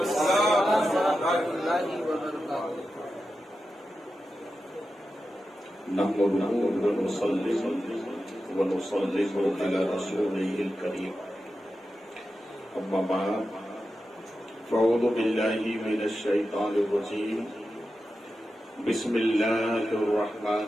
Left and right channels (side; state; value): both; normal; correlation 0.91